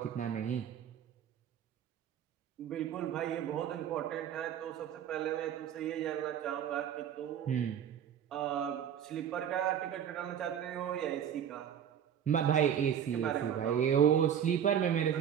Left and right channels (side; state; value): left; quieter; 9.2 dB